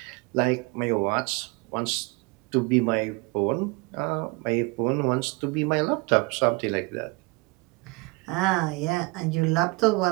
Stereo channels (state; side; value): quieter; left; 26.0 dB